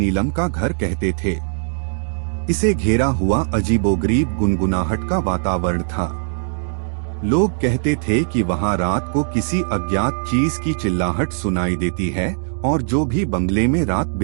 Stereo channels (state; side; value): silent; left; digital silence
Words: का घर कहते थे। इसे घेरा हुआ अजीबोगरीब गुनगुनाहट का वातावरण था। लोग कहते थे कि वहां रात को किसी अज्ञात चीज की चिल्लाहट सुनाई देती है और जो भी बंगले में रात